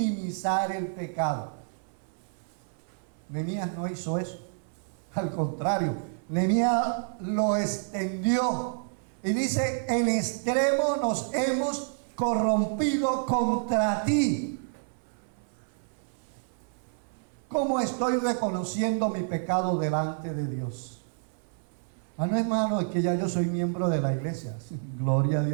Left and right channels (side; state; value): left; silent; 59 dB below the other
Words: el pecado. Nehemías no hizo eso. Al contrario, Nehemías lo extendió y dice: en extremo nos hemos corrompido contra ti. ¿Cómo estoy reconociendo mi pecado delante de Dios? No, hermano, es que ya yo soy miembro de la iglesia. Gloria a